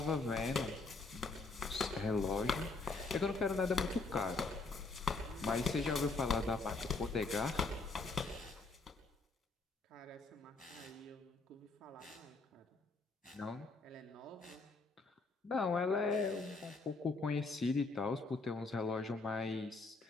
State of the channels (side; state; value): right; quieter; 3.7 dB